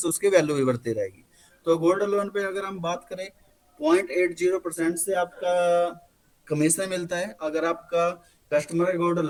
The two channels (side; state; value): both; identical; correlation 1.00